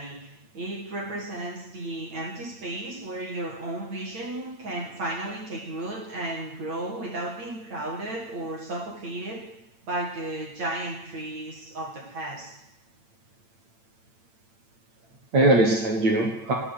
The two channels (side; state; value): left; late; 8.8 ms